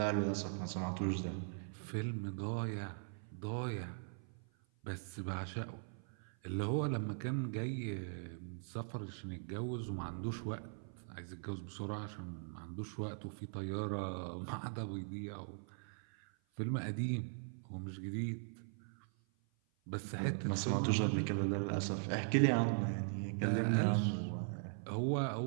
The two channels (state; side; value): silent; left; 51 dB below the other